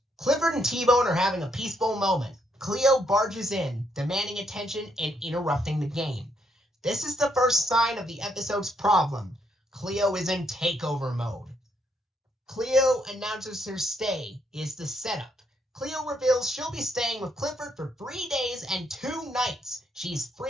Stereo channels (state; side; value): normal; both; correlation 0.74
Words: Clifford and T-Bone are having a peaceful moment. Cleo barges in, demanding attention and interrupting the game. This is the first sign of the episode's problem. Cleo is in takeover mode. Cleo announces her stay is the setup. Cleo reveals she'll be staying with Clifford for 3 days and 2 nights. She's